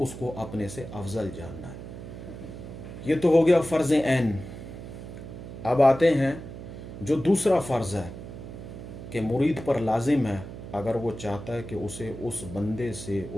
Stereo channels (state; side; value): noise; right; hum, 11 dB below the sound